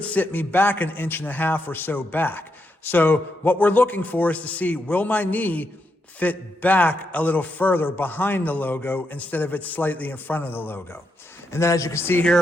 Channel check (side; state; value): both; normal; correlation 0.82